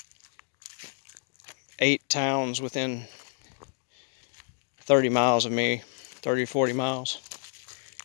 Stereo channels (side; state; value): right; silent; 58 dB below the other